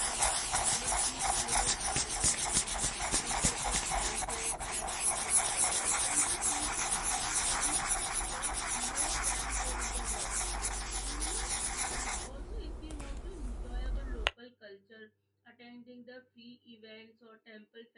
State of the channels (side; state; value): both; identical; correlation 1.00